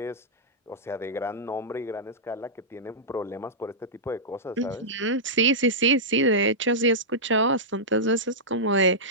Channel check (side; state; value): both; normal; correlation -0.12